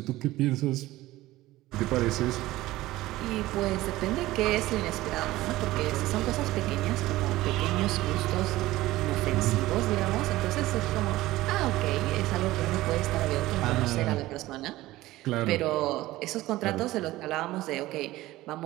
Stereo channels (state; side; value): quieter; left; 17.2 dB